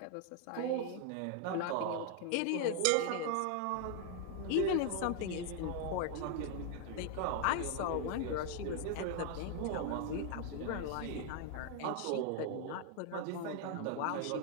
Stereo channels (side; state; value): both; different; correlation 0.00